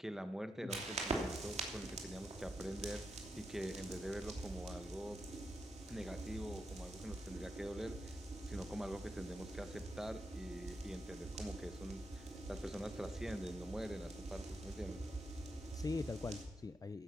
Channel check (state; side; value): normal; both; correlation 0.84